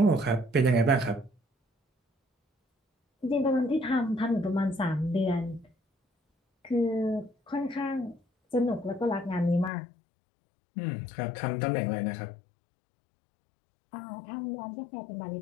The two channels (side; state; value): right; drops out; at 9.7 s